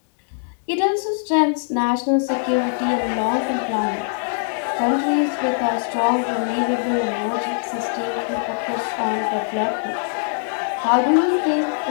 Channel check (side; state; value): right; silent; digital silence